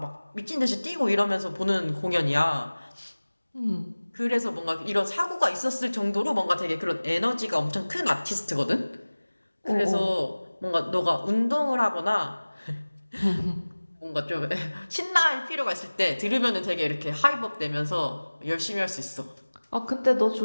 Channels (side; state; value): both; inverted; correlation -1.00